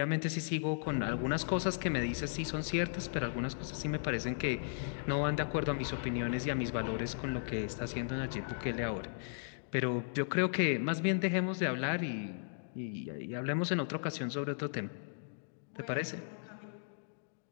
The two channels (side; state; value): right; silent; digital silence